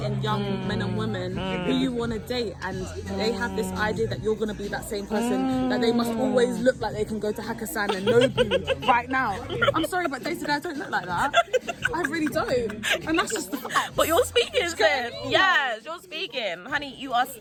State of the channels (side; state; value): both; identical; correlation 1.00